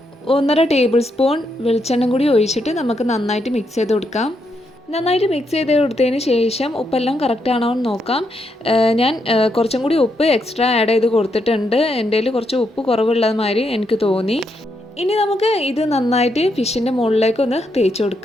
1.5 ടേബിൾ സ്പൂൺ വെളിച്ചെണ്ണ കൂടി ഒഴിച്ചിട്ട് നമുക്ക് നന്നായിട്ട് മിക്സ് ചെയ്ത് കൊടുക്കാം. നന്നായിട്ട് മിക്സ് ചെയ്ത് കൊടുത്തതിന് ശേഷം ഉപ്പെല്ലാം കറക്റ്റ് ആണോ എന്ന് നോക്കാം. ഞാൻ കുറച്ചും കൂടി ഉപ്പ് എക്സ്ട്രാ ആഡ് ചെയ്ത് കൊടുത്തിട്ടുണ്ട്. എൻ്റെ കയ്യിൽ കുറച്ച് ഉപ്പ് കുറവുള്ളത് മാതിരി എനിക്ക് തോന്നി. ഇനി നമുക്ക് ഇത് നന്നായിട്ട് ഫിഷിൻ്റെ മുകളിലേക്ക് ഒന്ന് തേച്ച്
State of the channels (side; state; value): both; normal; correlation 0.79